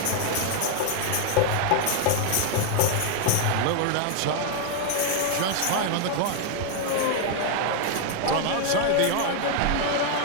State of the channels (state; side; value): different; both; correlation 0.00